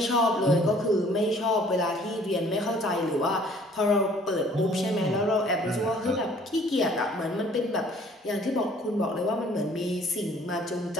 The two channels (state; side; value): normal; both; correlation 0.56